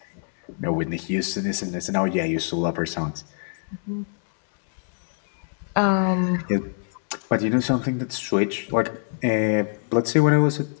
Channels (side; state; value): right; silent; digital silence